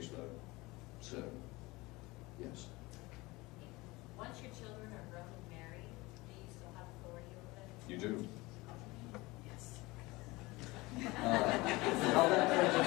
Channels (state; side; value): quieter; right; 22.0 dB